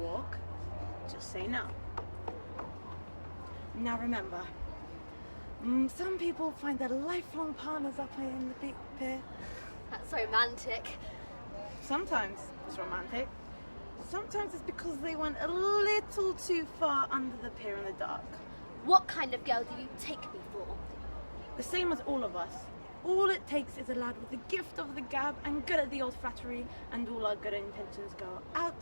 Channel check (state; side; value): inverted; both; correlation -1.00